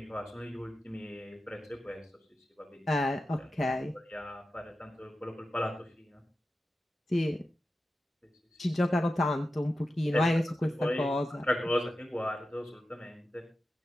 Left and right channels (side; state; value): both; normal; correlation 0.92